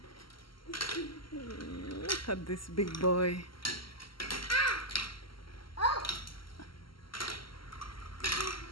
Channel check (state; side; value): late; right; 0.74 ms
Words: Look at this big boy.